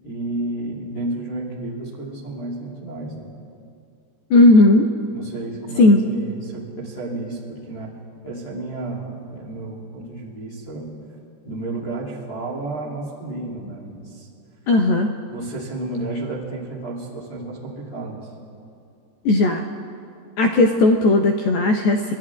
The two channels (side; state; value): right; late; 14 ms